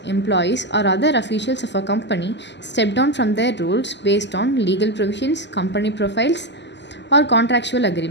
employees, or other officials of a company step down from their roles based on legal provisions, company profiles, or contractual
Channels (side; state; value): right; late; 0.51 ms